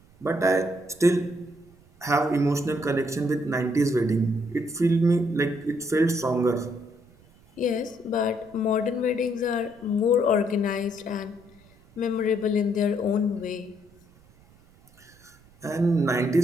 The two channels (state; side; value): noise; right; rumble, 28 dB below the sound